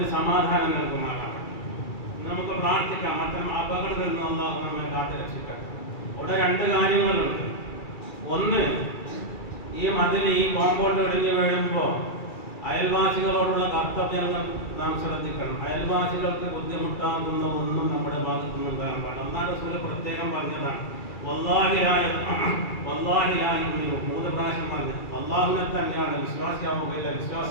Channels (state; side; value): late; right; 2.4 ms